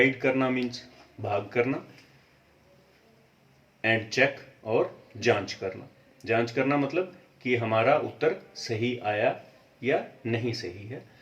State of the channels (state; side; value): identical; both; correlation 1.00